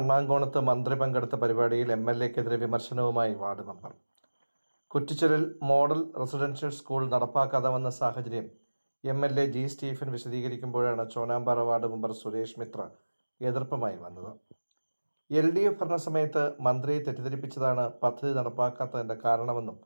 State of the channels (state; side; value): inverted; both; correlation -1.00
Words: മന്ത്രി പങ്കെടുത്ത പരിപാടിയിൽ എം.എൽ.എക്കെതിരെ വിമർശനവുമായി വാർഡ് മെമ്പർ. കുറ്റിച്ചലിൽ മോഡൽ റെസിഡൻഷ്യൽ സ്കൂൾ നടപ്പാക്കാതെ വന്ന സാഹചര്യം എം.എൽ.എ. ജി. സ്റ്റീഫൻ വിശദീകരിക്കുമ്പോഴാണ് ചോനാമ്പാറ വാർഡ് മെമ്പർ സുരേഷ് മിത്ര എതിർപ്പുമായി വന്നത്. LDF ഭരണസമയത്ത് മന്ത്രിയെ തെറ്റിദ്ധരിപ്പിച്ചതാണ് പദ്ധതി നടപ്പാക്കാത്തതിന്റെ കാരണമെന്നും